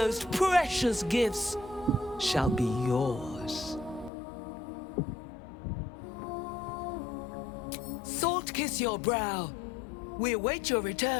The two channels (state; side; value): drops out; right; at 4.1 s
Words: precious gifts shall be yours. Salt kiss your brow. We await your